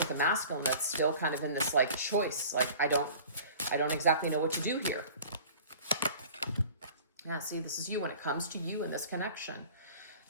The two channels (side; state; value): both; inverted; correlation -0.44